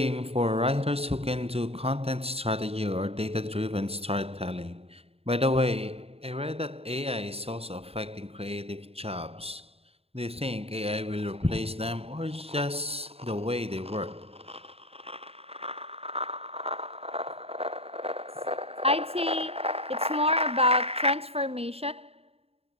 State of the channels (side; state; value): left; late; 0.29 ms